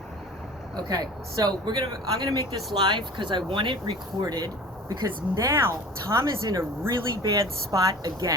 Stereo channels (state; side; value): normal; both; correlation 0.41